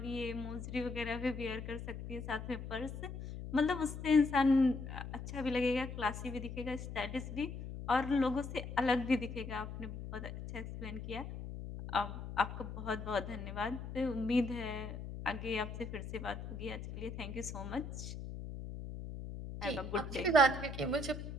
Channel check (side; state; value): left; noise; hum, 8 dB below the sound